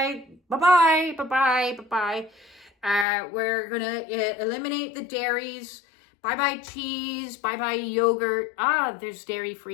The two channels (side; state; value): right; drops out; at 3.1 s